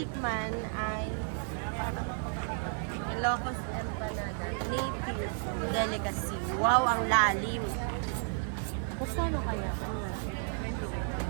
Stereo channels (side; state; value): left; silent; 56 dB below the other